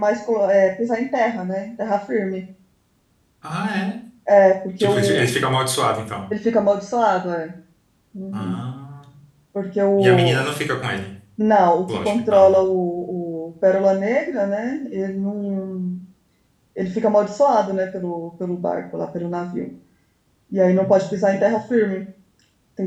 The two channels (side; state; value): both; identical; correlation 1.00